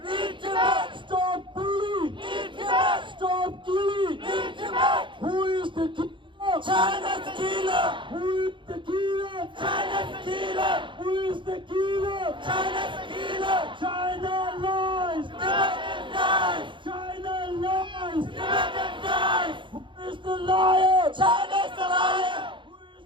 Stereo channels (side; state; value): left; late; 0.24 ms